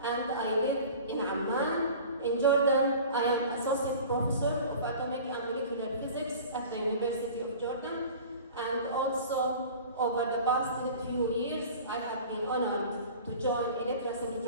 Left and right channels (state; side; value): inverted; both; correlation -0.41